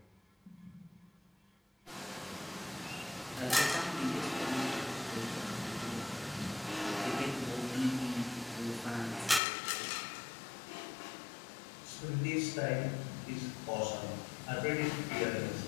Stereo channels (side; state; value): right; drops out; at 9.4 s